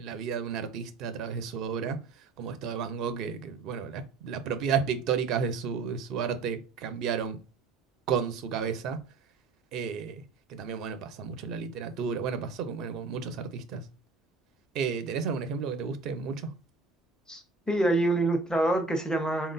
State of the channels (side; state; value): left; quieter; 4.1 dB